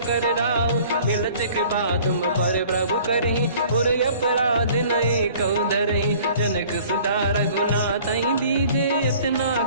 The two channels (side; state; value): both; inverted; correlation -0.51